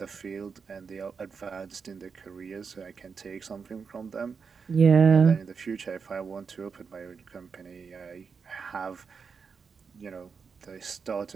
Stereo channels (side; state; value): left; quieter; 5.7 dB